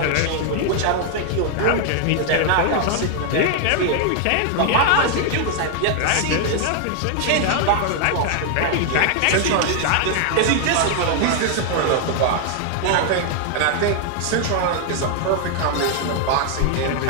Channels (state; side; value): different; both; correlation 0.00